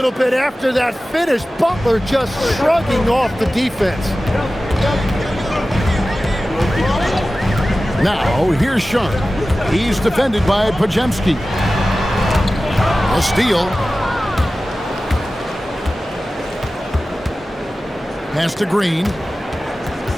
bit after that finish. Butler just shrugging off the defense. Now, here's Sharp. He's defended by Podziemski. A steal. Pass to Green.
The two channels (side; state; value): both; normal; correlation 0.95